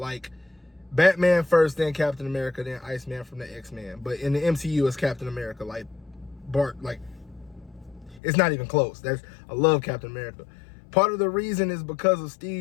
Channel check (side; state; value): right; drops out; at 8.2 s